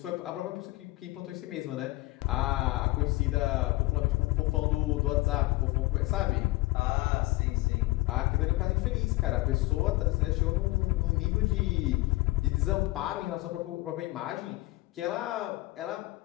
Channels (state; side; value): quieter; right; 19.8 dB